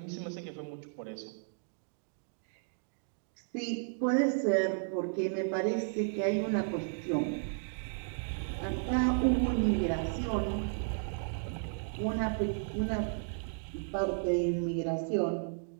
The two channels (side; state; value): left; silent; digital silence